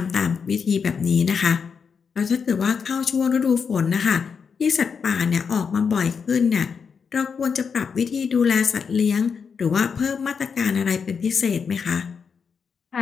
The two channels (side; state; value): right; quieter; 6.1 dB